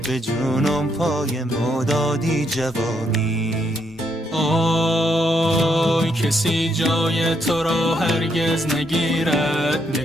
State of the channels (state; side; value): normal; both; correlation 0.75